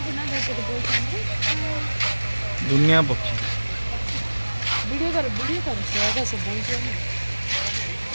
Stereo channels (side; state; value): both; inverted; correlation -1.00